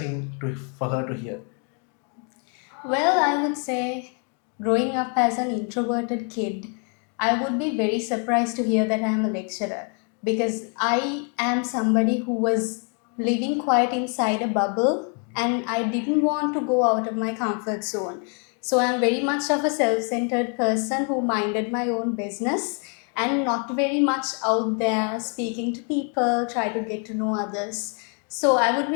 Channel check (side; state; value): right; quieter; 39.8 dB